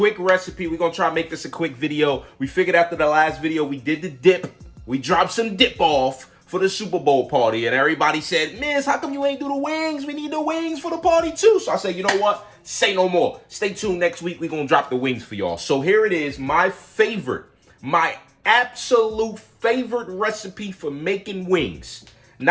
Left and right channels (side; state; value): both; identical; correlation 1.00